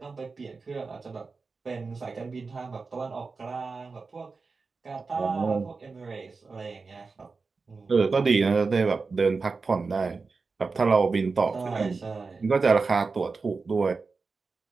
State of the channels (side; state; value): left; quieter; 4.4 dB